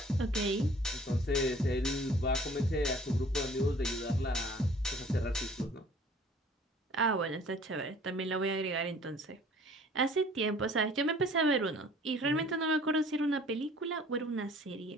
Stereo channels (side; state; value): both; normal; correlation 0.52